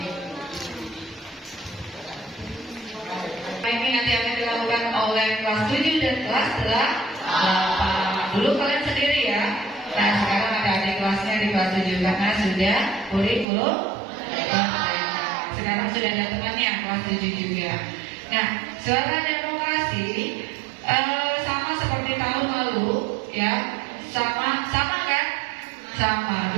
Ini nanti akan dilakukan oleh kelas 7 dan kelas 8. Dulu kalian sendiri ya. Nah sekarang ada adik kelasnya di kelas 7 karena sudah kurikulum. Sekarang sudah ada temannya kelas 7 juga. Nah suara demokrasi sama seperti tahun lalu ya. Sama kan? Sama.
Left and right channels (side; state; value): left; drops out; at 13.5 s